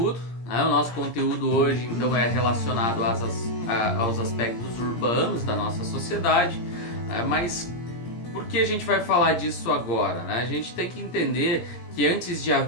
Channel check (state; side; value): late; right; 17 ms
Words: O nosso conteúdo hoje então é relacionado aos aspectos urbanos da nossa sociedade, mas por que a gente vai falar disso agora? A gente tem que entender que antes de